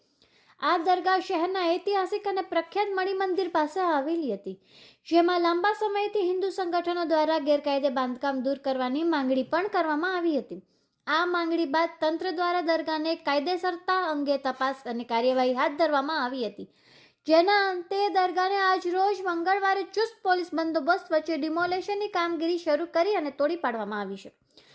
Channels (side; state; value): both; identical; correlation 1.00